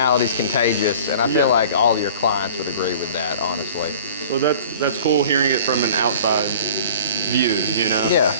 contagious, and I feel like all of your clients would agree with that, honestly. Well, that's cool hearing it from an outside view, you know? Yeah.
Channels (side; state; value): both; inverted; correlation -0.44